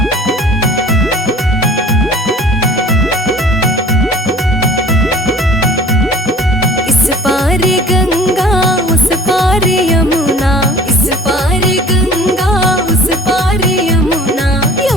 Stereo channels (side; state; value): both; normal; correlation 0.46